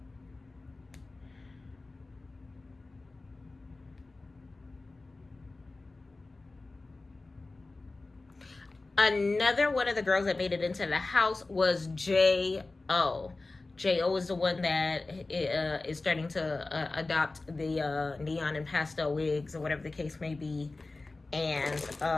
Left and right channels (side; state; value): right; quieter; 3.3 dB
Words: Another one of the girls that made it into the house was J.O. J.O. is the one that is starting to adopt the neon and pastel wigs, or whatever the case may be. And